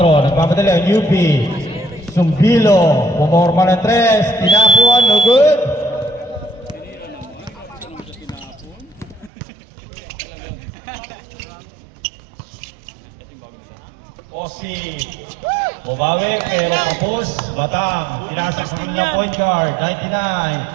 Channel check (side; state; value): left; drops out; at 9.3 s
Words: Nagpapadali ang UP. Sumbilo. Pumorma ng 3. Tinapuan. No good. Osi. Bumawi pero kapos. Batang. Pinasa sa kanilang point guard.